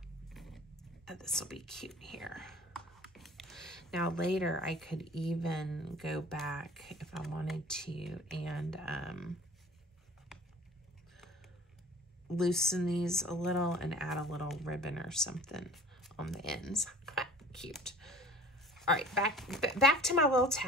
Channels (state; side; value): normal; both; correlation 0.46